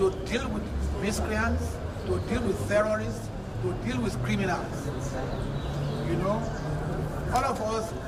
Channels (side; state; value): both; identical; correlation 1.00